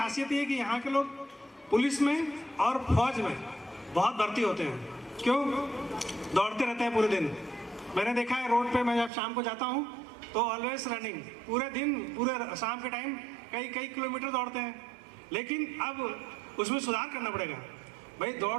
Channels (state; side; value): drops out; left; at 9.1 s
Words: है कि यहाँ के लोग पुलिस में और फौज में बहुत भर्ती होते हैं। क्यों? दौड़ते रहते हैं पूरे दिन। मैंने देखा है रोड पे, मैं जब शाम को जाता हूँ तो ऑलवेज रनिंग, पूरे दिन, पूरे शाम के टाइम कई किलोमीटर दौड़ते हैं। लेकिन अब उसमें सुधार करना पड़ेगा। भाई